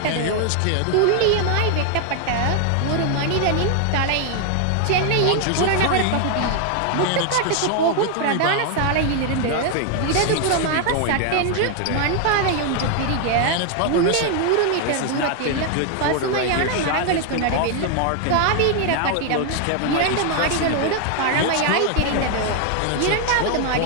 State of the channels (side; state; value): both; different; correlation 0.00